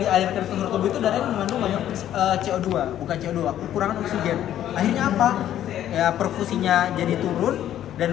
dialirkan ke seluruh tubuh itu darah yang mengandung banyak CO2, bukan CO2, kekurangan oksigen. Akhirnya apa? Ya perfusinya jadi turun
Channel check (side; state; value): right; quieter; 11.6 dB